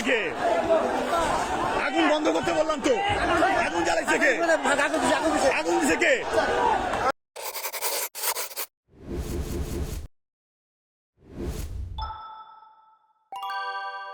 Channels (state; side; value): identical; both; correlation 1.00